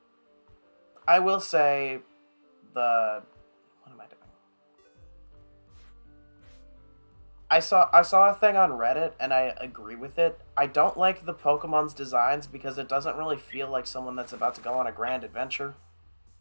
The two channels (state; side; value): inverted; both; correlation -1.00